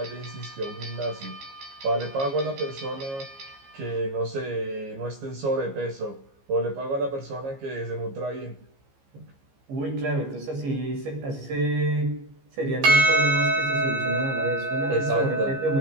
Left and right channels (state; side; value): late; left; 15 ms